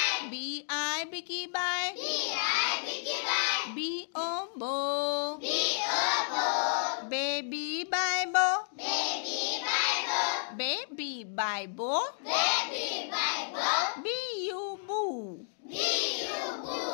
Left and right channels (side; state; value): right; silent; digital silence